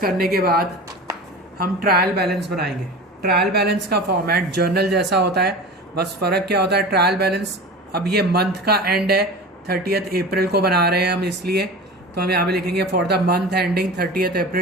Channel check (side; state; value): both; normal; correlation 0.33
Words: के बाद हम ट्रायल बैलेंस बनाएंगे। ट्रायल बैलेंस का फॉर्मेट जर्नल जैसा होता है, बस फ़र्क क्या होता है, ट्रायल बैलेंस अब ये मंथ का एंड है 30 अप्रैल को बना रहे हैं हम, इसलिए तो हम यहाँ पे लिखेंगे for the month ending 30